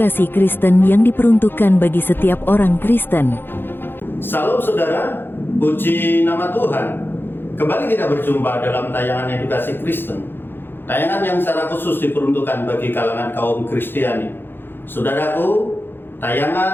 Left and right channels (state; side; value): late; right; 0.10 ms